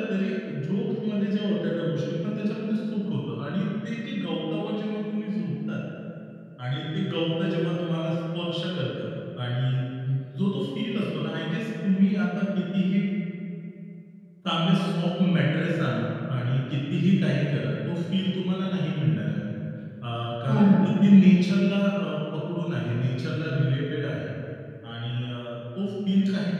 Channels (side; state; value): both; identical; correlation 1.00